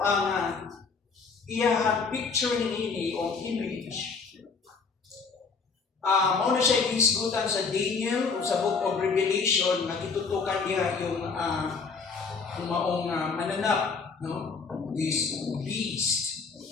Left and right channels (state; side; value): quieter; right; 4.9 dB